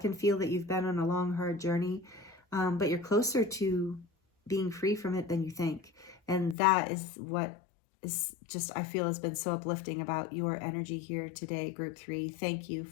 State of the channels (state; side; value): drops out; right; at 6.6 s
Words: feel that you've been on a long, hard journey, but you're closer to being free from it than you think. And that is what is just, I feel, has been so uplifting about your energy here today, group 3. Thank you